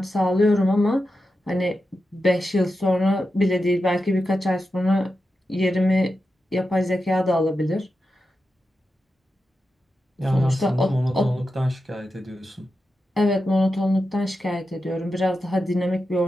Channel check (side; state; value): both; normal; correlation 0.90